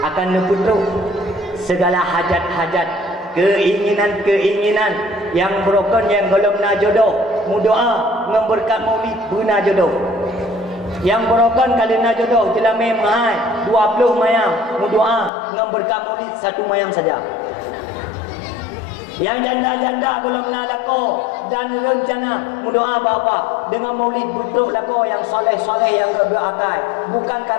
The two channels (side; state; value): right; drops out; at 15.3 s